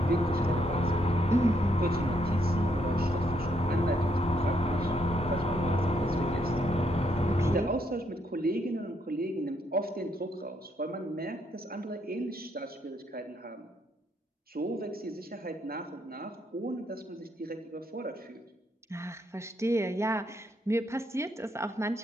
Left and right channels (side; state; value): both; normal; correlation 0.74